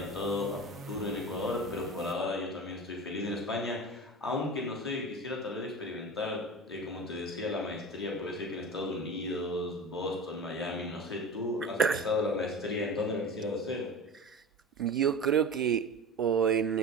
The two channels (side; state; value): both; normal; correlation 0.31